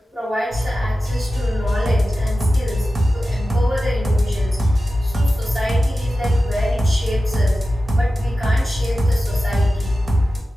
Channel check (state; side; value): normal; both; correlation 0.94